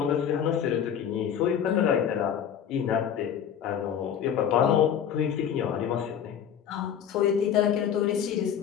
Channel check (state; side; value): quieter; right; 8.8 dB